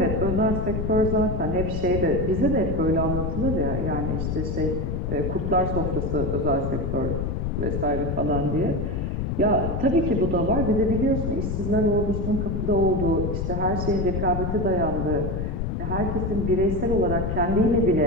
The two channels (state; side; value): noise; left; rumble, 1 dB below the sound